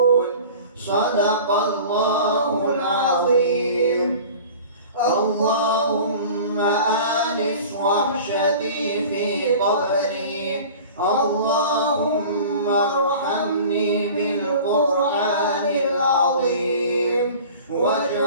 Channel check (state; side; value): inverted; both; correlation -0.41